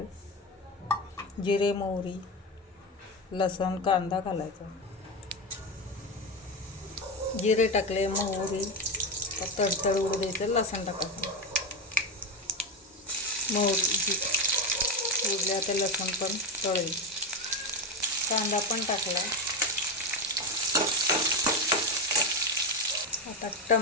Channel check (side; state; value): both; normal; correlation 0.14